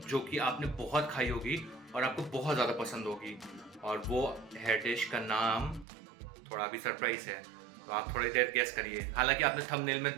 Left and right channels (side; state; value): left; drops out; at 5.9 s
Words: जो कि आपने बहुत खाई होगी और आपको बहुत ज़्यादा पसंद होगी। और वो है डिश का नाम थोड़ा अभी सरप्राइज है, तो आप थोड़ी देर गेस करिए। हालांकि आपने थंबनेल में